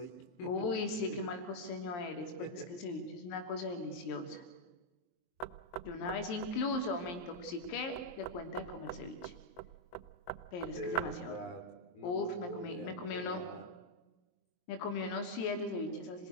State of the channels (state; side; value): late; right; 23 ms